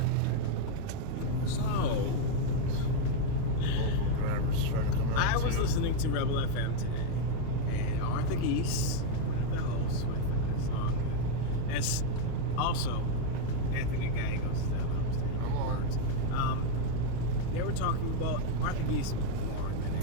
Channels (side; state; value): both; different; correlation 0.01